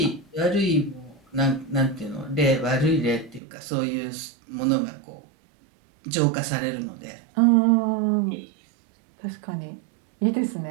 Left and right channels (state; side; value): drops out; left; at 3.4 s